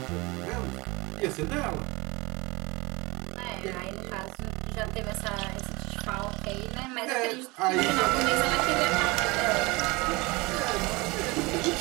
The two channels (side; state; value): left; quieter; 24.4 dB